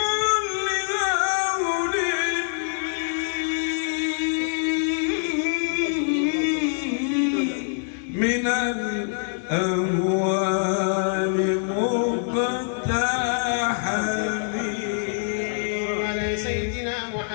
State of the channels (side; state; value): right; silent; digital silence